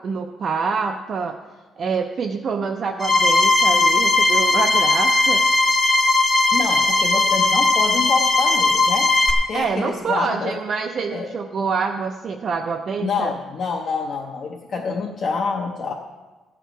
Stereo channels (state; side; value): normal; both; correlation 0.82